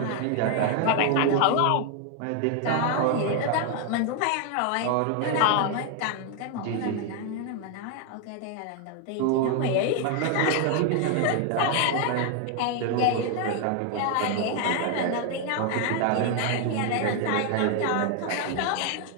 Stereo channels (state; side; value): different; both; correlation 0.00